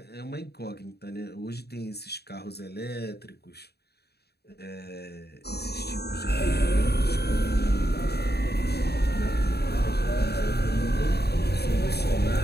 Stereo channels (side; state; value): right; late; 0.47 ms